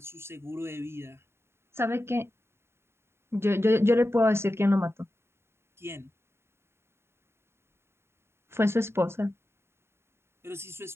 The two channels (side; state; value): left; late; 0.12 ms